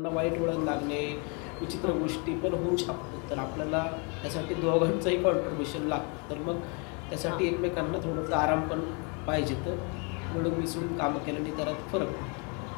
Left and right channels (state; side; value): quieter; right; 34.2 dB